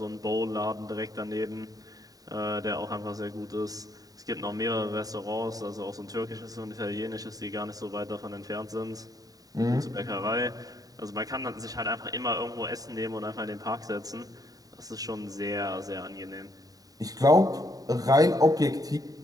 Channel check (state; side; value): late; left; 0.18 ms